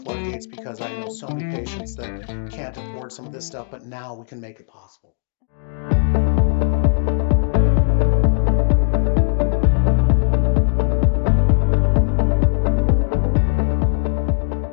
floodgates because I know so many patients that can't afford some of this stuff, but now we can make it possible.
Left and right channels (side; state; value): right; silent; 67 dB below the other